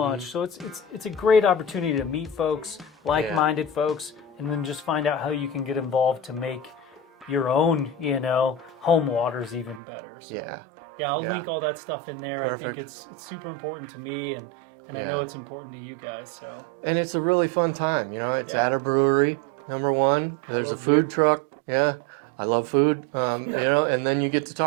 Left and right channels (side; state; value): left; drops out; at 9.8 s